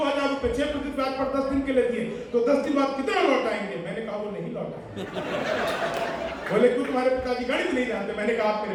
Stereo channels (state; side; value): identical; both; correlation 1.00